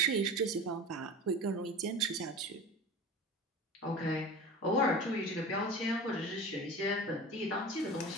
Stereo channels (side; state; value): both; normal; correlation 0.34